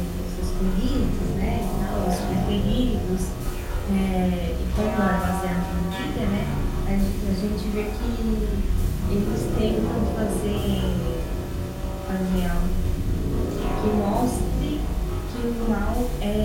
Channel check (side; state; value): both; identical; correlation 1.00